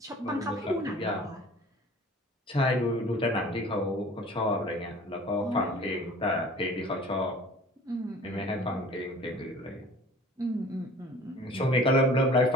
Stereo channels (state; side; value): normal; both; correlation 0.46